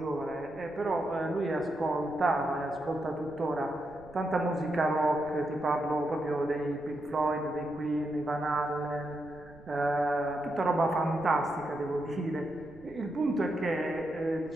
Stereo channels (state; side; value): noise; right; rumble, 22 dB below the sound